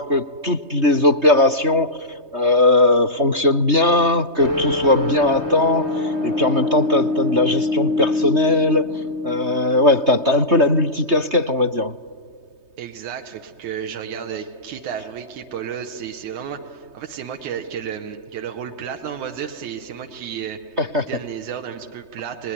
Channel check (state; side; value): late; left; 3.2 ms